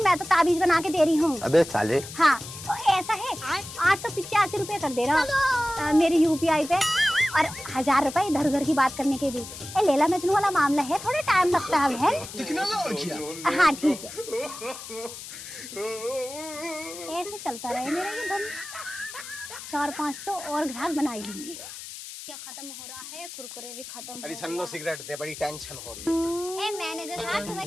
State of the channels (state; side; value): noise; left; hiss, 12 dB below the sound